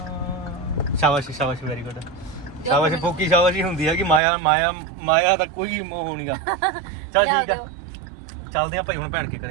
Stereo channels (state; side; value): drops out; left; at 4.2 s